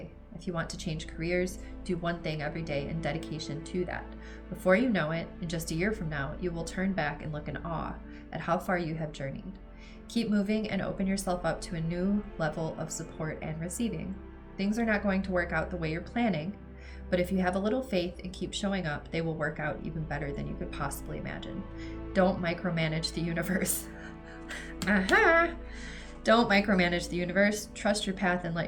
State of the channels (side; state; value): both; identical; correlation 1.00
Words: If you want to change careers, do one thing every day in dedication to that. Before you know it, in just a year from now, you will turn back and look in awe at how far you have journeyed. Keep moving and open yourself up to a new level of support and receiving. Things are not going to work out the way you're planning, but if you have a little faith and keep showing up, they will work out even better than you could possibly imagine. Don't micromanage the universe. Don't micromanage the universe. Trust your path and let